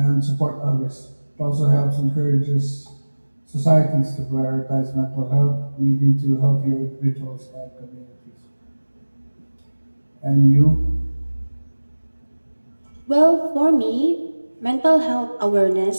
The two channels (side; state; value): both; inverted; correlation -1.00